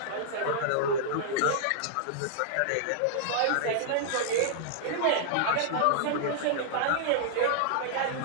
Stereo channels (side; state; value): both; different; correlation -0.01